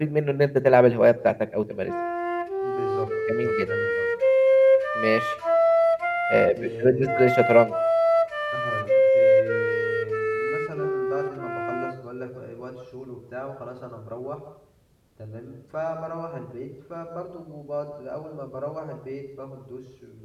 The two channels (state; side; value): identical; both; correlation 1.00